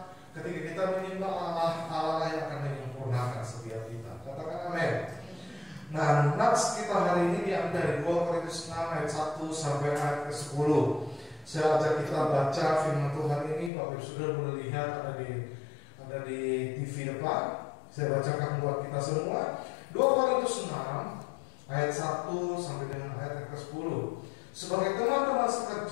ketika kita menyembah Allah, Allah yang akan menyempurnakan setiap kita. Katakan amin. Nah, nats kita hari ini diambil dari 2 Korintus 6 ayat 1 sampai ayat ke-10. Saya ajak kita baca firman Tuhan ini. Bapak Ibu sudah boleh lihat ada di TV depan. Saya bacakan buat kita semua. 2 Korintus 6 ayat 1 sampai dengan ayat ke-10. Sebagai teman-teman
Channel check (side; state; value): right; drops out; at 13.7 s